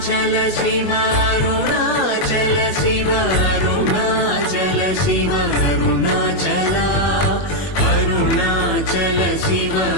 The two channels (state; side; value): late; right; 21 ms